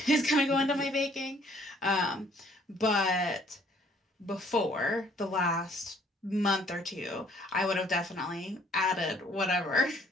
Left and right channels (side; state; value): both; normal; correlation 0.61